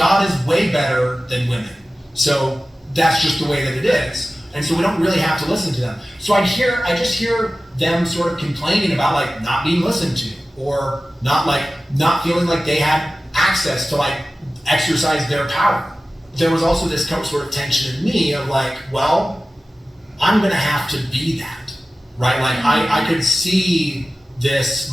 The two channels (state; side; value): normal; both; correlation 0.96